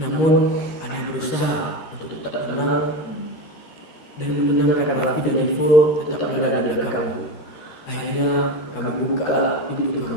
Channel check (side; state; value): right; late; 13 ms